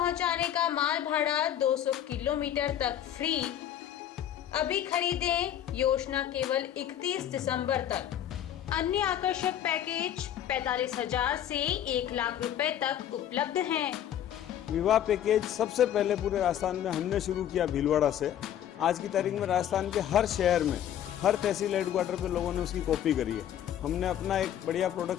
का माल भाड़ा 200 किलोमीटर तक फ्री। अभी खरीदें, योजना केवल 31 दिसंबर तक। अन्य आकर्षक पैकेज 45,000 से 1 लाख रुपए तक उपलब्ध हैं। विवाह पैकेज सबसे पहले पूरे राजस्थान में हमने शुरू किया भीलवाड़ा से। आज की तारीख में राजस्थान के हर शहर में, हर तहसील हेडक्वार्टर पे लोगों ने उसकी कॉपी करी है। हमने अपना एक बढ़िया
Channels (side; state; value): right; quieter; 10.6 dB